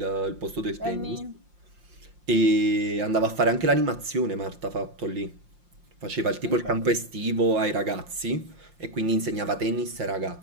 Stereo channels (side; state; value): left; late; 5.7 ms